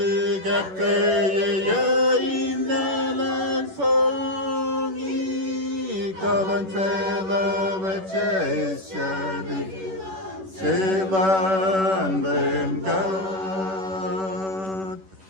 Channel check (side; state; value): left; late; 11 ms